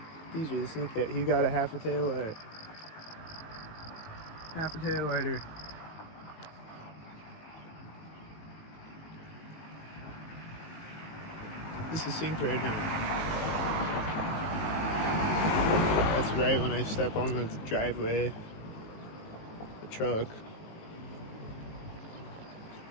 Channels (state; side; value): late; right; 19 ms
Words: These are the sink that he got a half a tail light. Half a tail lighter. This is synced right now. That's right when I step on the driveway. The truck.